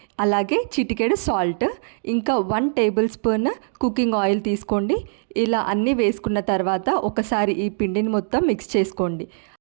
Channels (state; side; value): silent; left; digital silence